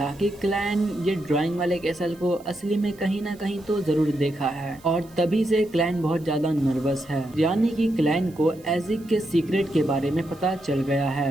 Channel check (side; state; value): right; noise; hiss, 26 dB below the sound